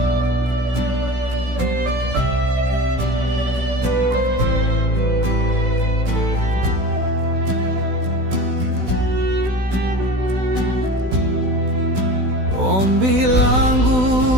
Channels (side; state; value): left; late; 16 ms